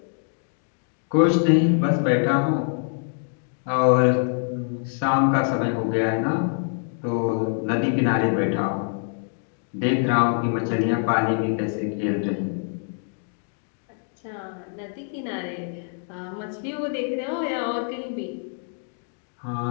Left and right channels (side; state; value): right; silent; 59 dB below the other